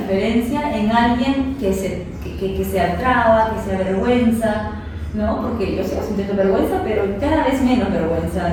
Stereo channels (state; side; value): identical; both; correlation 1.00